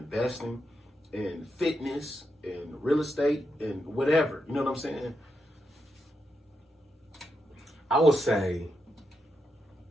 in fitness, in real estate, and whatever? You know what I'm saying? I would say,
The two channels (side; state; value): both; normal; correlation 0.84